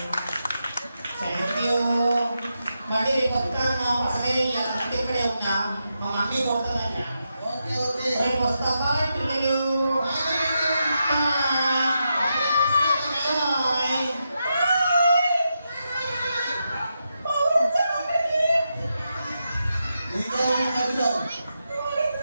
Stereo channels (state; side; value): inverted; both; correlation -0.86